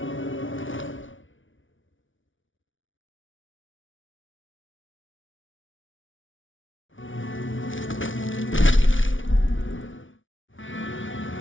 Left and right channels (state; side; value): late; right; 0.56 ms